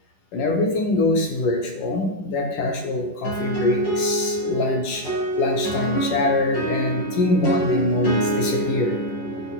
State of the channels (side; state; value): right; late; 10 ms